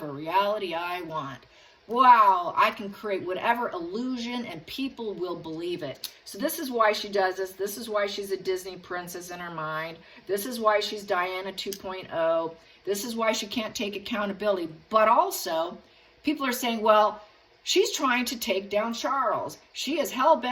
reality I want. Wow, I can create whatever illusion and people will believe it. So this is why she does this. This is why she's a Disney princess in her mind. This is why she's Diana 2.0. This is why she can't take accountability. But also, people are saying, well, she's trying to take down Charles. She is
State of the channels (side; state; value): both; identical; correlation 1.00